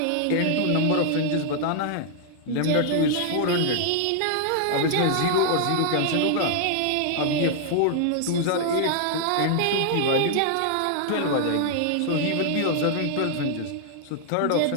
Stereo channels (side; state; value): both; different; correlation 0.00